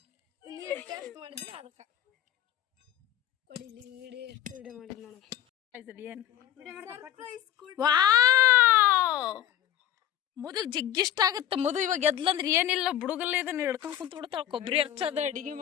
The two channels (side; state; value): right; quieter; 11.5 dB